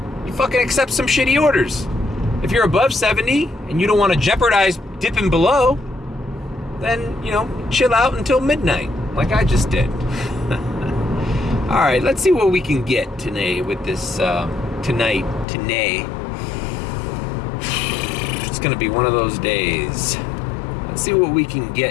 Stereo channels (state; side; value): drops out; right; at 15.5 s